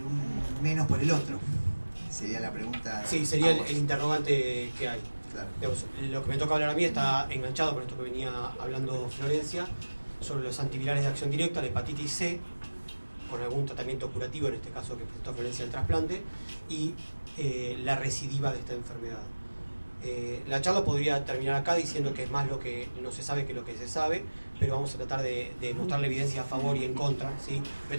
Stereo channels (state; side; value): inverted; both; correlation -1.00